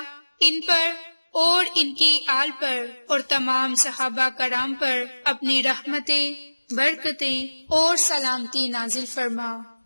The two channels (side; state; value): both; inverted; correlation -1.00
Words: ان پر اور ان کی آل پر اور تمام صحابہ کرام پر اپنی رحمتیں، برکتیں اور سلامتی نازل فرما،